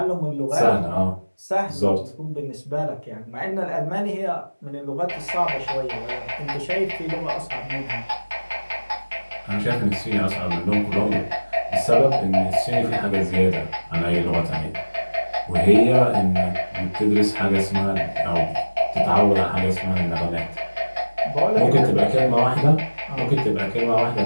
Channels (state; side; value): inverted; both; correlation -1.00